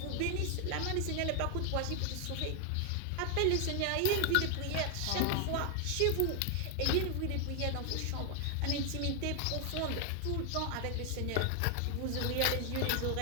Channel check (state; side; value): different; both; correlation 0.00